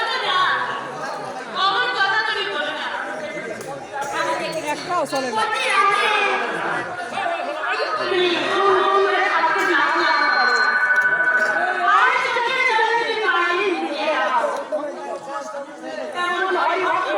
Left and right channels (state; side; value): identical; both; correlation 1.00